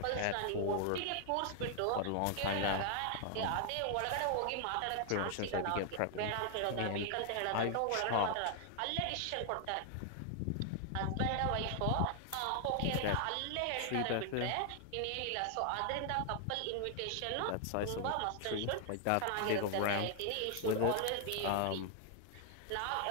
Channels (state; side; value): different; both; correlation 0.00